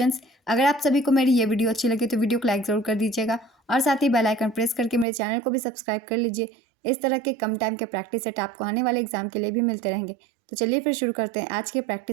अगर आप सभी को मेरी ये वीडियो अच्छी लगे तो वीडियो को लाइक ज़रूर कर दीजिएगा और साथ ही बेल आइकन प्रेस करके मेरे चैनल को भी सब्सक्राइब कर लीजिए। इस तरह के कम टाइम के प्रैक्टिस सेट आपको आने वाले एग्जाम के लिए भी मिलते रहेंगे। तो चलिए फिर शुरू करते हैं आज के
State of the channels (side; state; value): left; drops out; at 5.1 s